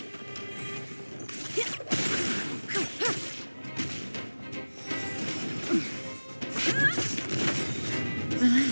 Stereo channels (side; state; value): both; inverted; correlation -1.00